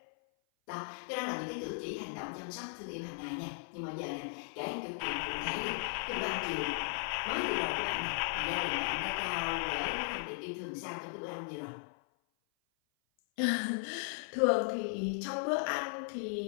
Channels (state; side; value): silent; right; 53 dB below the other